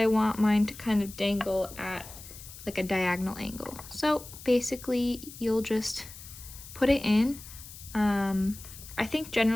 want mine to kind of dangle at like a diagonal angle. So basically you'll just put it in. I think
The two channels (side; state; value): left; noise; hiss, 16 dB below the sound